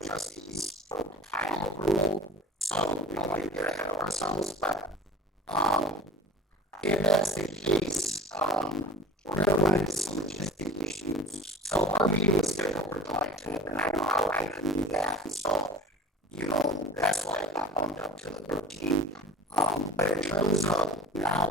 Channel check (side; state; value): both; normal; correlation 0.43